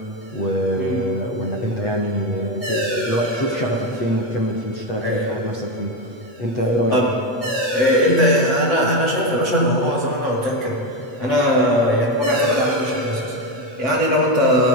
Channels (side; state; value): right; late; 8.2 ms